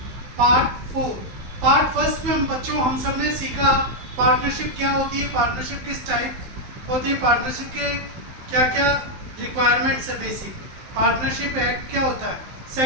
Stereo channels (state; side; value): late; left; 15 ms